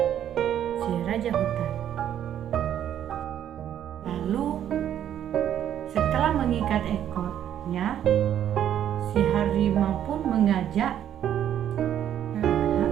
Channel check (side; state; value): left; quieter; 10.4 dB